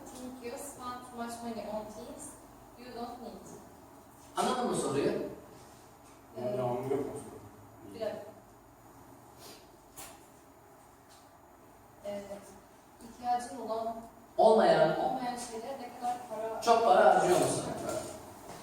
think you spend too much money on things you don't need? anladın mı soruyu? Devamı yok mu? Bir dakika. İhtiyacın olan, Olmayan, olmayan şeylere ne kadar para çok para harcıyor musun?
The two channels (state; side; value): identical; both; correlation 1.00